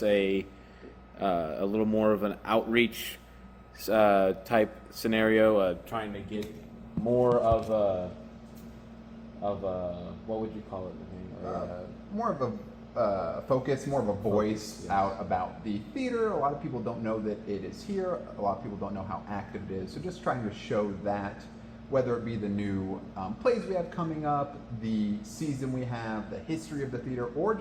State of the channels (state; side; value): identical; both; correlation 1.00